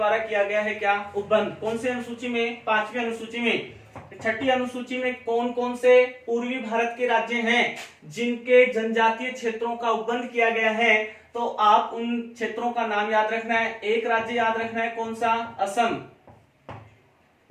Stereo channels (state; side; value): identical; both; correlation 1.00